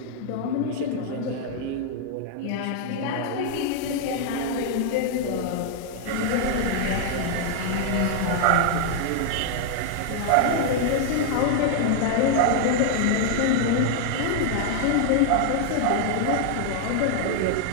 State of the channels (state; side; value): different; both; correlation 0.00